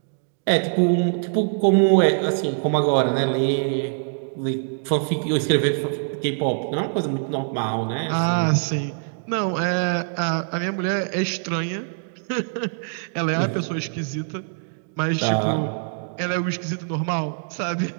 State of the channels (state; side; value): silent; left; digital silence